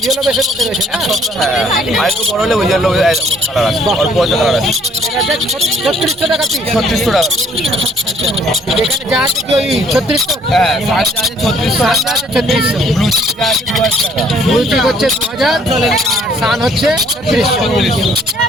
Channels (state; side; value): normal; both; correlation 0.62